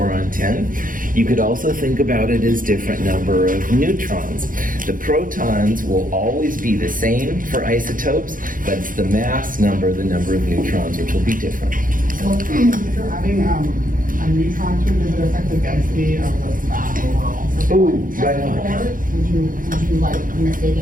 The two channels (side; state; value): left; late; 0.40 ms